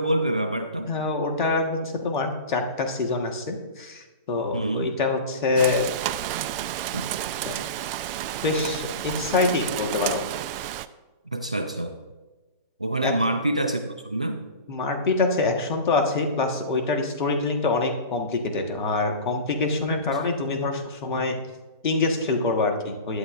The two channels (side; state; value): both; inverted; correlation -0.32